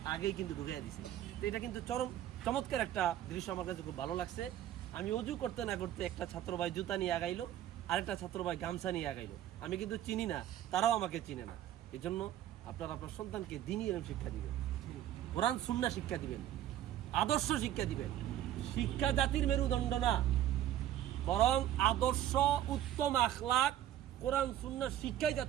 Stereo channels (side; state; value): left; quieter; 12.1 dB